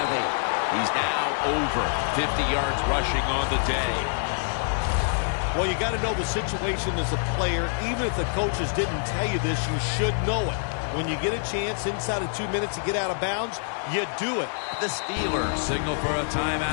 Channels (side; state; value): right; silent; digital silence